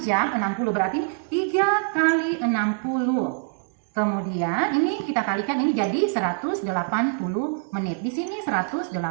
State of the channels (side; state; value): left; silent; digital silence